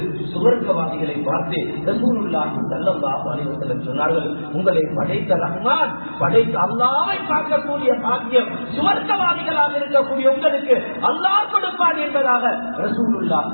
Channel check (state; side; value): inverted; both; correlation -1.00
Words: சுவர்க்கவாதிகளை பார்த்து ரசூலுல்லாஹி ஸல்லல்லாஹு அலைஹி வஸல்லம் சொன்னார்கள், உங்களை படைத்த ரஹ்மான், படைத்த அல்லாஹ்வை பார்க்கக்கூடிய பாக்கியம் சுவர்க்கவாதிகளாக இருக்கக்கூடிய உங்களுக்கு அல்லாஹ் கொடுப்பான் என்பதாக ரசூலுல்லாஹி